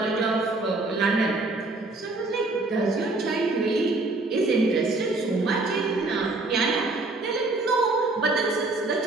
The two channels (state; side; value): quieter; left; 3.2 dB